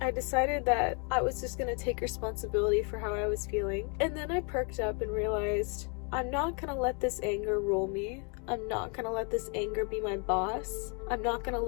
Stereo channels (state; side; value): quieter; right; 36.2 dB